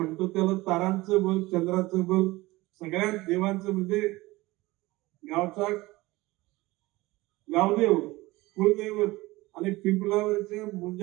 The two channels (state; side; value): quieter; left; 20.2 dB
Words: त्याला तारांचं बल, चंद्राचं बल, सगळ्या देवांचं म्हणजे गावचा गावदेव, कुलदैवत आणि पिंपलावरच्या